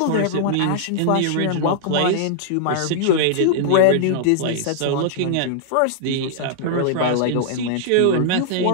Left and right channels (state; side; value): different; both; correlation -0.01